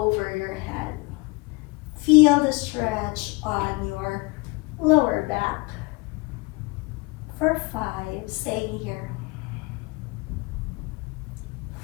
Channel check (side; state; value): right; quieter; 26.1 dB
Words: your head. Feel the stretch on your lower back. For 5, staying here.